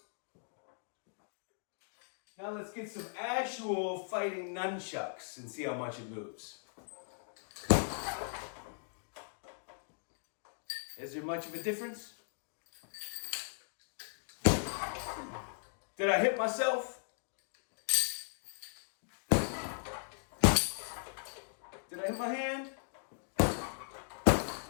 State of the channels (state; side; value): silent; right; digital silence